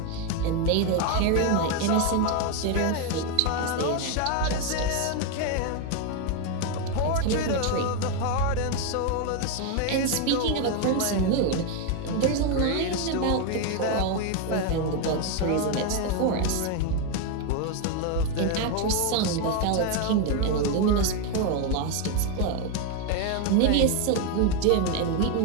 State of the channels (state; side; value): different; both; correlation 0.02